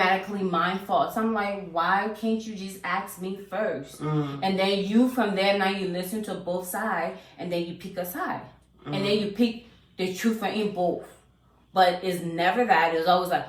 my fault. So I'm like, why can't you just ask me first? Mm-hmm. And then you, from there, now you listen to both sides, and then you pick a side. And then you pick the truth in both. But it's never that. It's always like,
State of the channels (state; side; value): identical; both; correlation 1.00